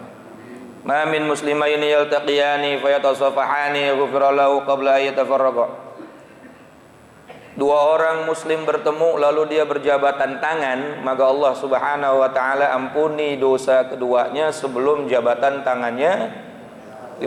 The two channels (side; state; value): both; identical; correlation 1.00